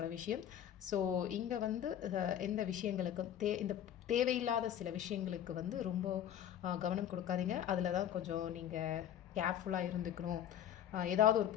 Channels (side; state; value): right; quieter; 10.4 dB